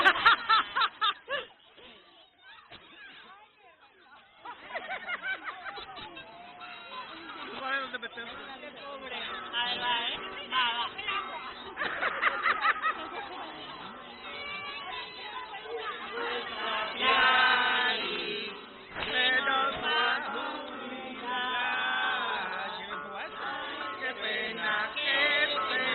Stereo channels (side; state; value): both; identical; correlation 1.00